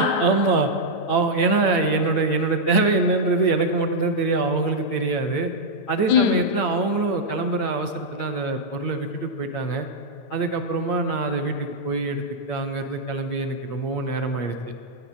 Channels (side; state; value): right; late; 8.7 ms